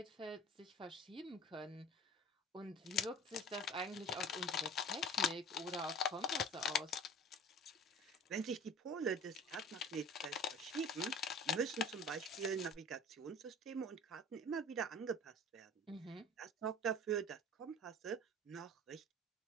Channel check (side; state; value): both; normal; correlation 0.41